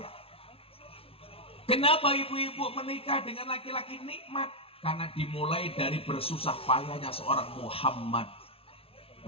Kenapa ibu-ibu menikah dengan laki-laki nikmat? Karena dimulai dari bersusah payahnya seorang Muhammad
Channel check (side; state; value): right; late; 0.27 ms